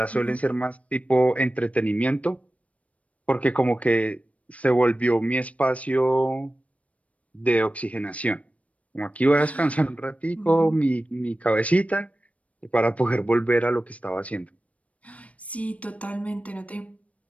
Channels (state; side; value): late; right; 0.066 ms